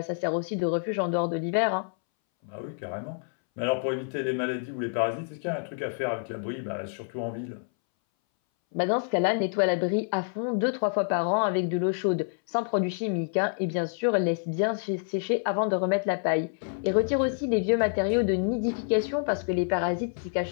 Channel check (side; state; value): right; silent; 60 dB below the other